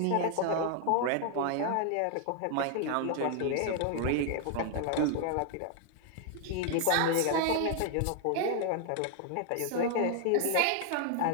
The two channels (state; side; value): different; both; correlation 0.00